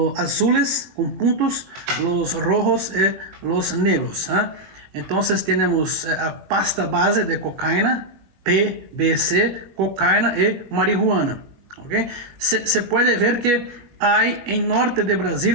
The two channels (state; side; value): late; left; 21 ms